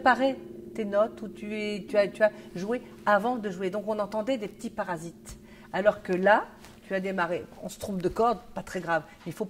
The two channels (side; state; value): both; identical; correlation 1.00